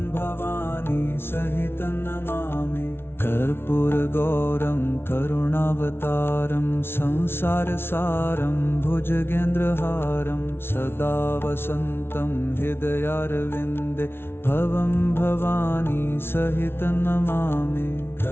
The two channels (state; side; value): late; right; 0.12 ms